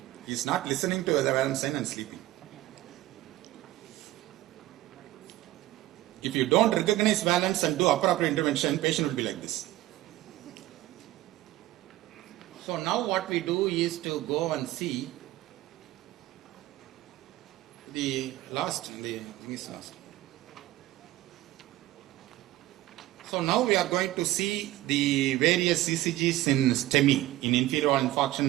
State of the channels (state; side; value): quieter; left; 15.9 dB